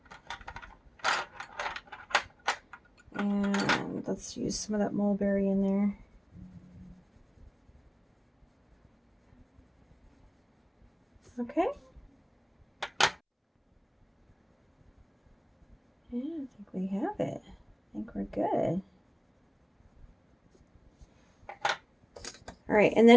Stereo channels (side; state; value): both; identical; correlation 1.00